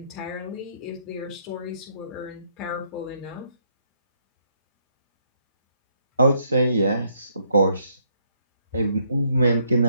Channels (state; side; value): inverted; both; correlation -0.72